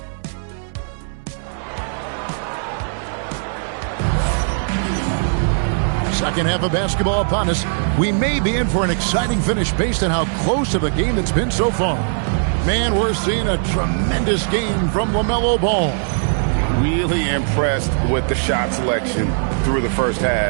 Second half of basketball upon us. We may be in for an exciting finish based on how close of a game it's been so far. Man, we're seeing a tremendous game from LaMelo Ball. Really impressed with the shot selection through the first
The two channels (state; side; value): silent; left; 66 dB below the other